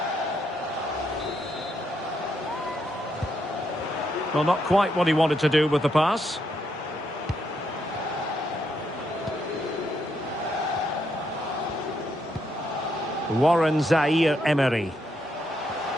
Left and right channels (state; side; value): normal; both; correlation 0.78